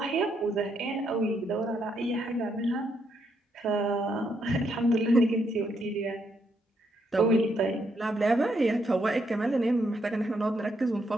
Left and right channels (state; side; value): normal; both; correlation 0.77